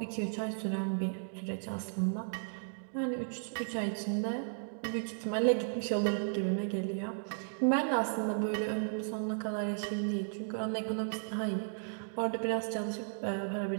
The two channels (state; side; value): silent; left; digital silence